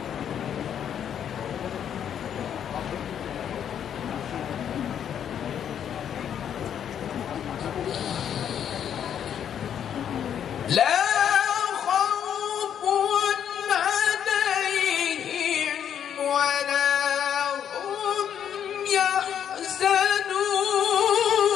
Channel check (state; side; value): quieter; right; 9.0 dB